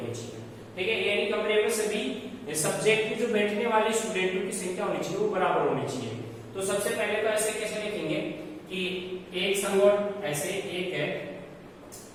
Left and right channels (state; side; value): identical; both; correlation 1.00